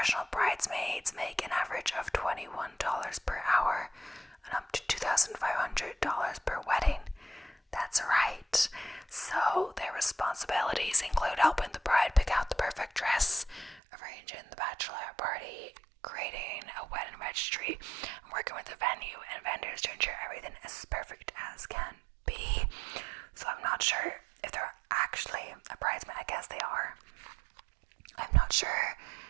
bridesmaids make an average of $21 per hour and up to $2,500 per wedding. That's right. So their responsibilities include helping the bride pick out the perfect dress, arranging the bachelorette party, creating a wedding registry, and working with the venue and vendors to ensure everything is as perfect as can be. So I'm not sure if they're actually a bridesmaid. I guess they are. I'm not sure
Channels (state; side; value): drops out; left; at 13.8 s